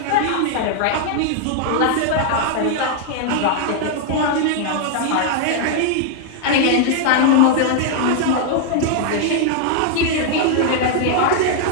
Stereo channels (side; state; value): both; different; correlation 0.00